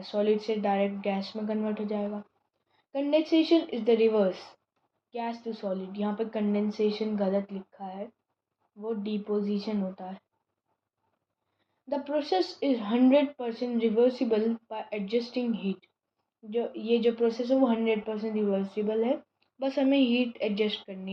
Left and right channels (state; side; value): identical; both; correlation 1.00